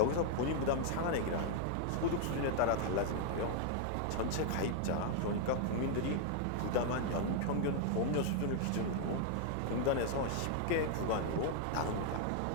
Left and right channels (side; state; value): both; different; correlation 0.00